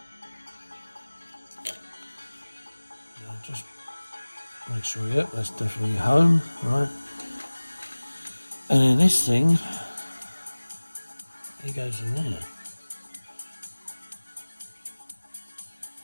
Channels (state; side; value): inverted; both; correlation -1.00